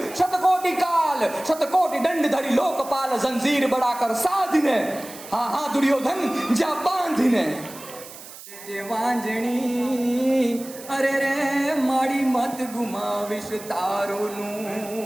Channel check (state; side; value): noise; right; hiss, 16 dB below the sound